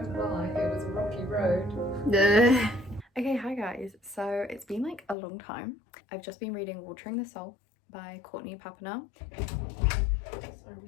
lie, it was a rocky road. Okay, hi guys. So it's been like a long time. I've just been reading Watering the Soul by Courtney Papernell. Sorry,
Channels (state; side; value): drops out; right; at 5.2 s